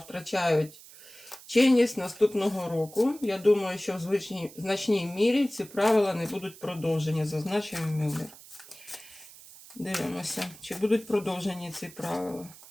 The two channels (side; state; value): right; noise; hiss, 19 dB below the sound